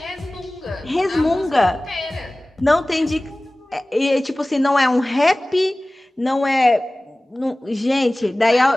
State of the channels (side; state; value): both; normal; correlation 0.98